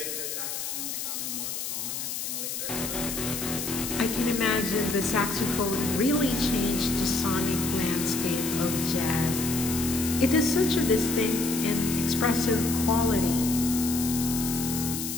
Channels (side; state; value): left; noise; hiss, 4 dB below the sound